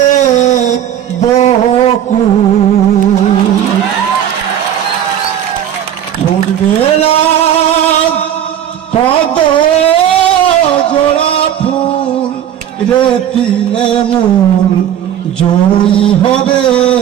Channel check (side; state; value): left; quieter; 10.2 dB